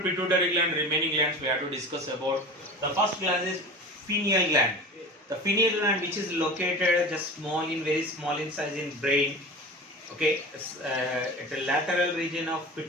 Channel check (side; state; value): both; normal; correlation 0.34